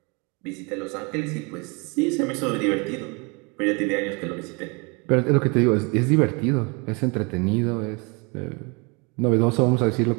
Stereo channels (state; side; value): quieter; left; 30.5 dB